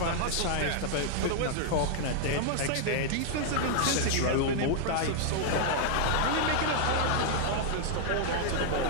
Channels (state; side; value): different; both; correlation -0.01